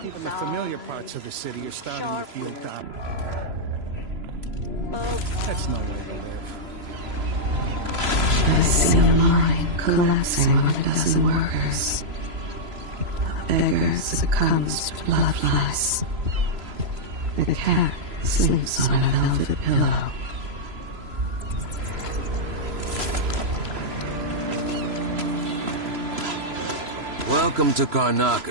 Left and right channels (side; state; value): left; late; 3.0 ms